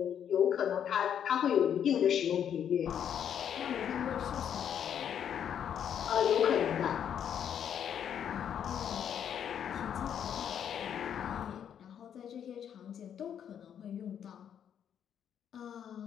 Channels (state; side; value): quieter; right; 8.9 dB